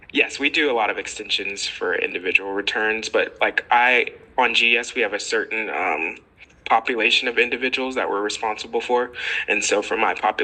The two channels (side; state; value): both; identical; correlation 1.00